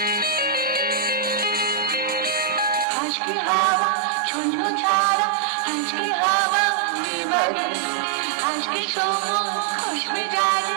আজকে হাওয়া ঝুনঝুন ছাড়া, আজকে হাওয়া নিবারে, আজকে সময় খুশবে জানে,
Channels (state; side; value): drops out; left; at 2.9 s